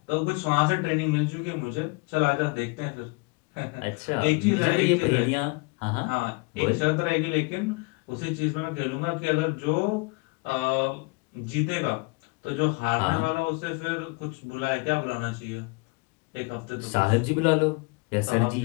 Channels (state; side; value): quieter; right; 28.4 dB